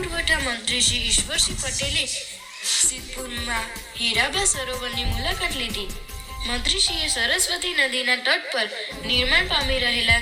મંત્રી શ્રી ઈશ્વરસિંહ પટેલે સિદ્ધપુરમાં હીરાબા સરોવરની મુલાકાત લીધી। મંત્રીશ્રીએ સરસ્વતી નદીના તટ પર નિર્માણ પામી રહેલા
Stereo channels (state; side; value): identical; both; correlation 1.00